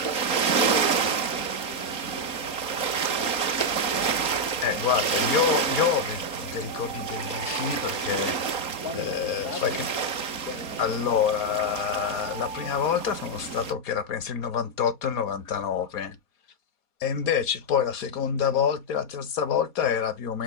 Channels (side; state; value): right; late; 3.8 ms